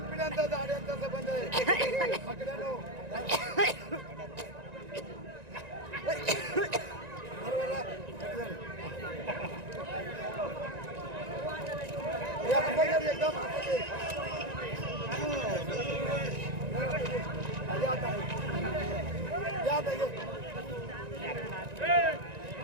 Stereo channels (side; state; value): left; late; 1.9 ms